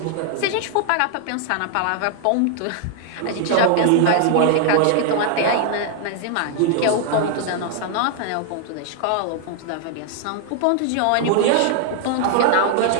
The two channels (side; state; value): both; different; correlation 0.00